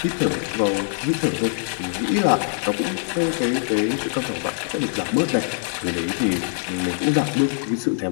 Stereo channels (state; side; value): silent; right; digital silence